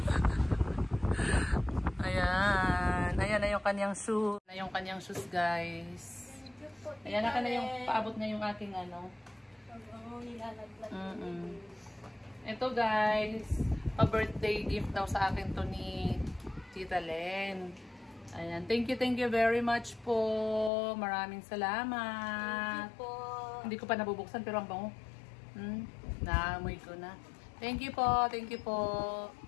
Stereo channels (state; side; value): drops out; right; at 20.7 s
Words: Ayan. Ayan na yung kanyang shoes. Na yung kanyang shoes, guys. Ayan na ka na yung paabot na yung aking ano. Nilalaglag. Ito, guys. Pa-birthday gift daw sa akin to ni Tita Len. Ayan. Thank you very much po. Maraming salamat. Thank you po. Hindi ko pa nabubuksan pero ang bango. Naamoy ko na. Thank you po.